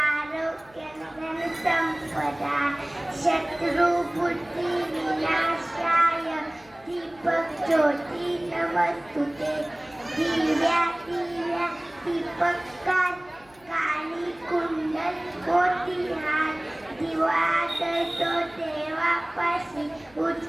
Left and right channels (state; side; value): noise; left; hum, 28 dB below the sound